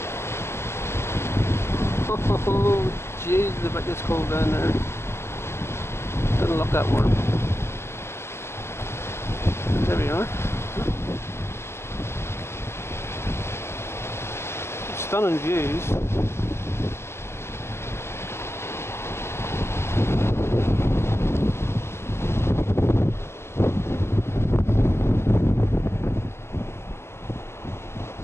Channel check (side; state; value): right; late; 0.12 ms